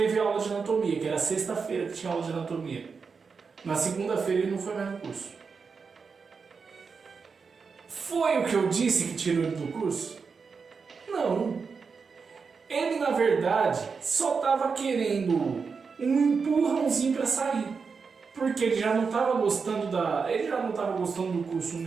aula de anatomia, que era sexta-feira que tinha aula de anatomia. Na segunda-feira ele não foi mais no curso. Foi o que eu disse que tirou ele do curso? Não. Ele, na verdade, só estava querendo um empurrãozinho para sair. Porque ele já não estava gostando do curso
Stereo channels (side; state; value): left; quieter; 5.3 dB